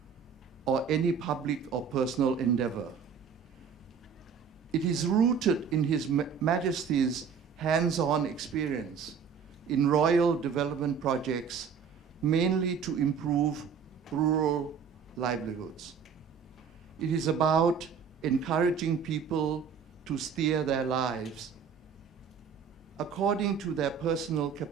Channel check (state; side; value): quieter; left; 6.6 dB